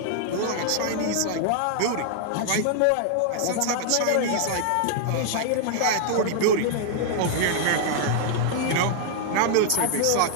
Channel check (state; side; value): different; both; correlation -0.01